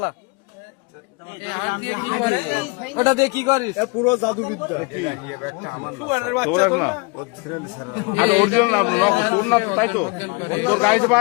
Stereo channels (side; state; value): right; quieter; 29.3 dB